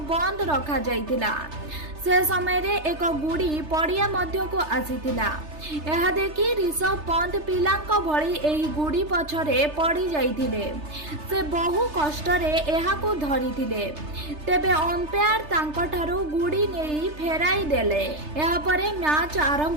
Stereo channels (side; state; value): left; late; 3.3 ms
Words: बंद रखा जाइतिला। से समय रे एक गुड़ी पड़िया मध्य को आसीतिला। यह देखि ऋषभ पंत पिलांक भली एही गुड़ी पछरे पड़ी जाइतिले। से बहु कष्टरे एहाकू धरिथिले, तेबे अंपायर तांकठारू गुड़ी नेई फेराई देले। एहा परे मैच